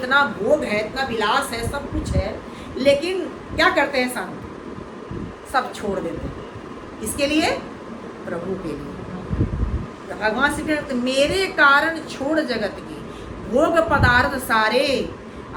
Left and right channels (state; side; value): identical; both; correlation 1.00